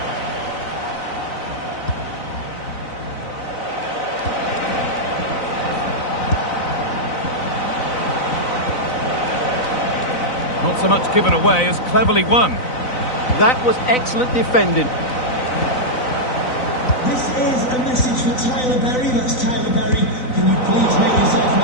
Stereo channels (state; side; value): late; right; 4.0 ms